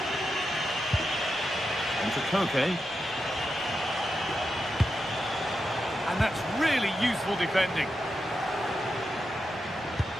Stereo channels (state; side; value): normal; both; correlation 0.87